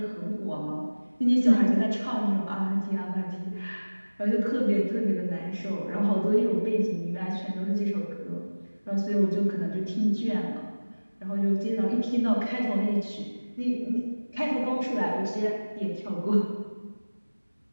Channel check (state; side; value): inverted; both; correlation -1.00